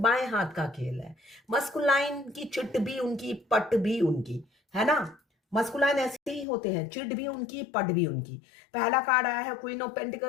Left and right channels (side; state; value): right; drops out; at 6.5 s